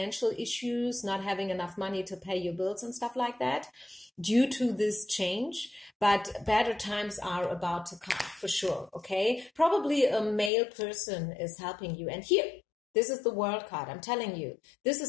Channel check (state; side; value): drops out; right; at 10.5 s